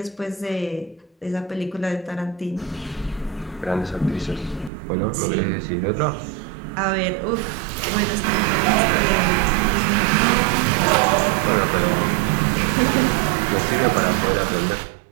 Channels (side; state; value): left; drops out; at 4.7 s